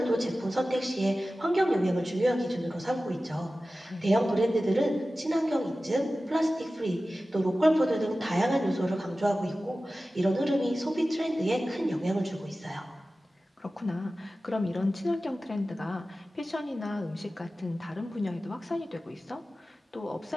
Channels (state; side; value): normal; both; correlation 0.95